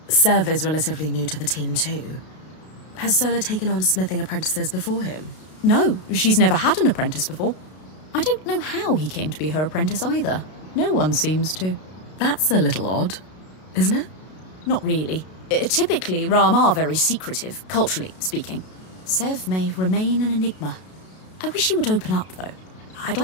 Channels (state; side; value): late; right; 32 ms